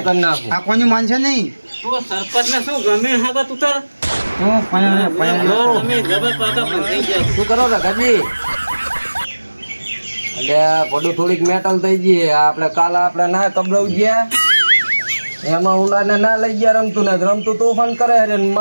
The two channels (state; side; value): inverted; both; correlation -1.00